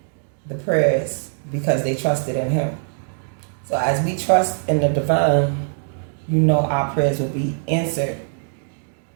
the prayers because they trusted in him. So as we trust in the divine, our prayers will be answered,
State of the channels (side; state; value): left; silent; digital silence